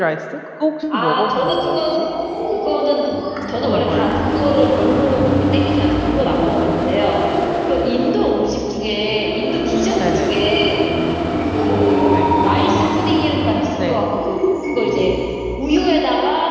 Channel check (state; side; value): identical; both; correlation 1.00